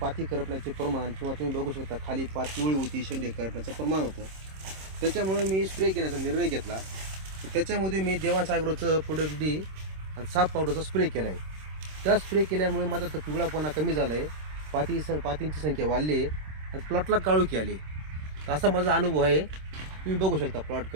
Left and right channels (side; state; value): left; late; 26 ms